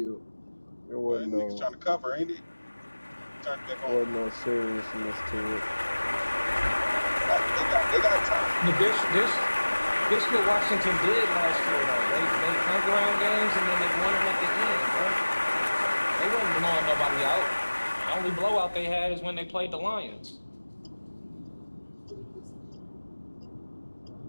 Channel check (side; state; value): both; inverted; correlation -1.00